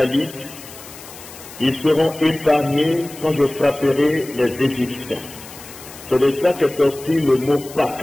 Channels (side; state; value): left; noise; hiss, 17 dB below the sound